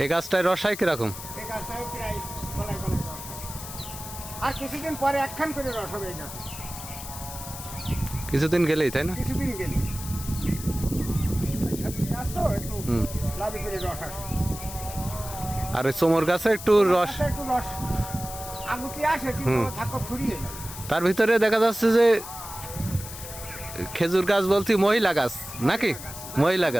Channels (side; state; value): left; noise; hiss, 11 dB below the sound